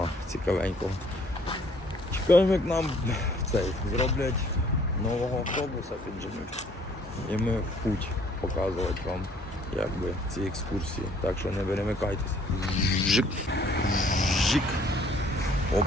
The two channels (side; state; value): both; normal; correlation 0.60